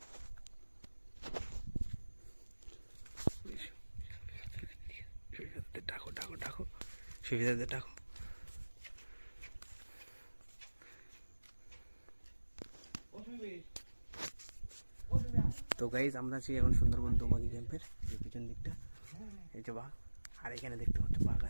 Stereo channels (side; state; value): both; inverted; correlation -1.00